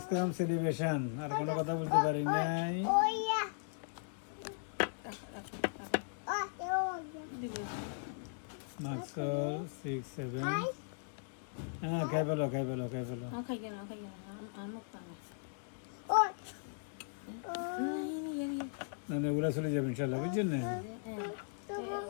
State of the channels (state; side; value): silent; right; digital silence